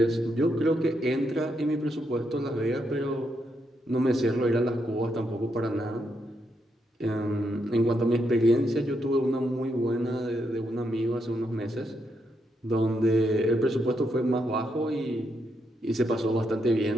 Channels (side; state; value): both; normal; correlation 0.80